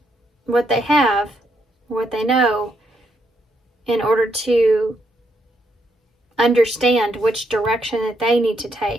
what they have, what they know, in order to understand which direction that they need to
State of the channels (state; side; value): normal; both; correlation 0.77